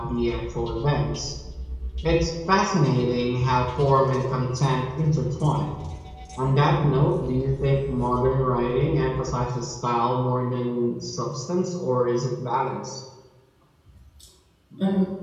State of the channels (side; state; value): both; identical; correlation 1.00